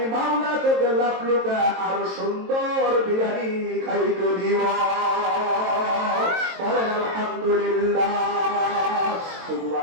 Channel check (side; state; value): left; late; 22 ms